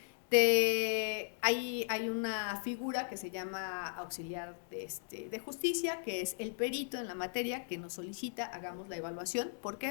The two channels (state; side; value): silent; right; digital silence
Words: hay una figura que se llama auxiliar de justicia, que es el perito en la materia que nos solicita, hagamos la evaluación. ¿Por qué?